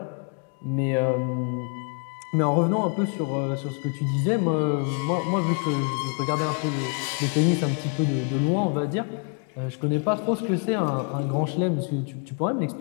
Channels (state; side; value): quieter; right; 38.8 dB